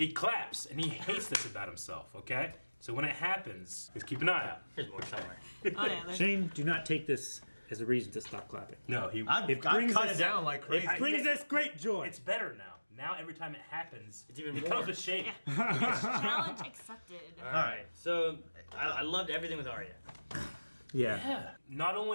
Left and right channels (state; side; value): inverted; both; correlation -1.00